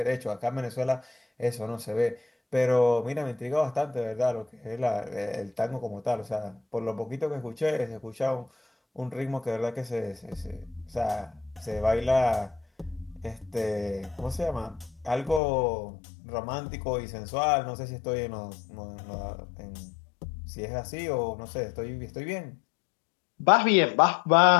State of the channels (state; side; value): drops out; right; at 15.4 s